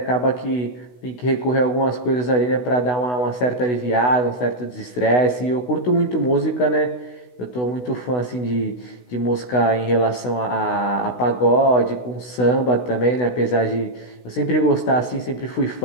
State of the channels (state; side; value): late; right; 16 ms